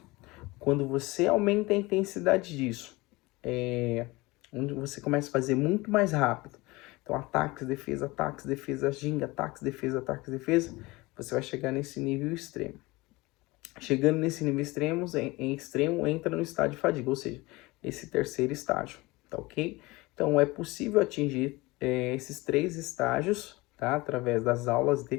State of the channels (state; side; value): quieter; right; 22.2 dB